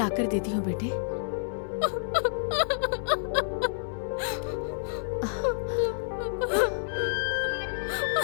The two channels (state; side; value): silent; right; digital silence